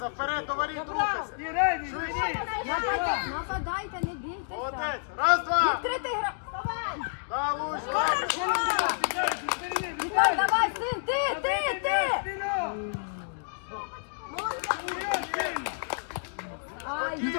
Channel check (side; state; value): right; silent; digital silence